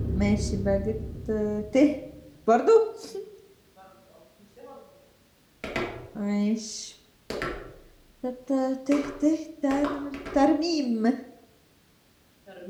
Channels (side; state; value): both; identical; correlation 1.00